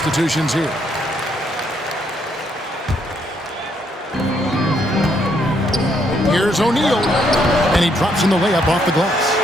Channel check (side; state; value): both; normal; correlation 0.72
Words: here. Here's O'Neal, and he drops in the layup off the